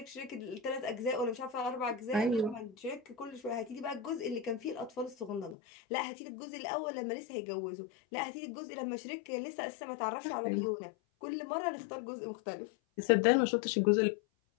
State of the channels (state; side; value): drops out; right; at 5.6 s